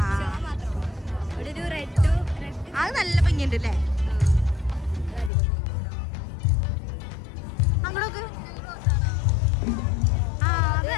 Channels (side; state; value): right; drops out; at 5.3 s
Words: അത് നല്ല ഭംഗിയുണ്ട് അല്ലേ? അങ്ങോട്ടൊക്കെ